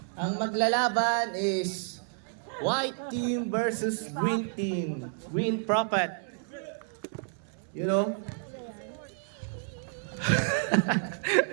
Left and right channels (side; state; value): left; silent; 58 dB below the other